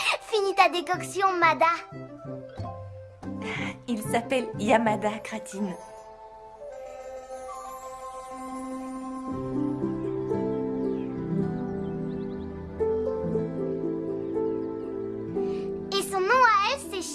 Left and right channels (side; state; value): both; identical; correlation 1.00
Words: Finis ta décoction, Mada. Il s'appelle Yamada, Kratine. Et son nom à elle,